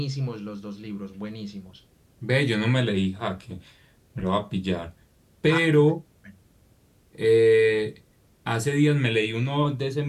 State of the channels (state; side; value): identical; both; correlation 1.00